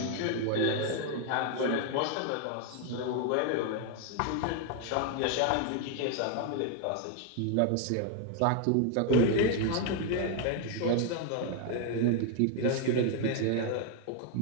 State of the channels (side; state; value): both; different; correlation 0.01